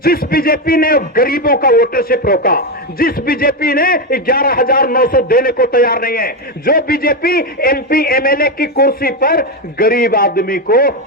बीजेपी ने गरीबों का वोटरशिप रोका, जिस बीजेपी ने 11,900 देने को तैयार नहीं है, जो बीजेपी एमपी एमएलए की कुर्सी पर गरीब आदमी को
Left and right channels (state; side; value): normal; both; correlation 0.09